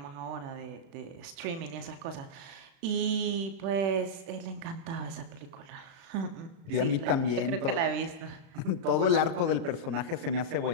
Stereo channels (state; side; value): late; left; 36 ms